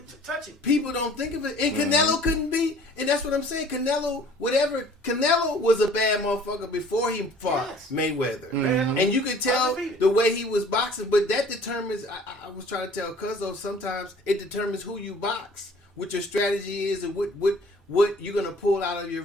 touch him. people don't think of it, and Canelo couldn't be, and that's what I'm saying. Canelo was a bad motherfucker before he fought Mayweather, and you could tell Undefeated. the way he was boxing. But that determines. I was trying to tell Cuzzo, sometimes it determines who you box, what your strategy is, and what you're gonna pull out of your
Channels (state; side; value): normal; both; correlation 0.51